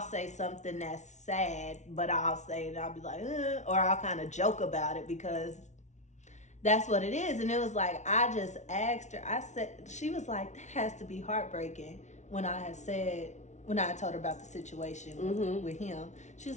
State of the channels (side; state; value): right; late; 0.34 ms